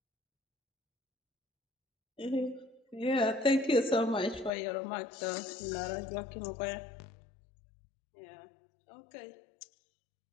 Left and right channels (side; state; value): right; drops out; at 4.5 s